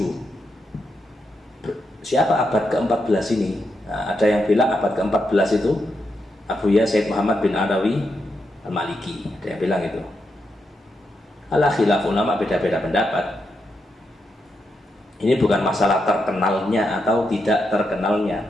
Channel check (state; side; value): normal; both; correlation 0.83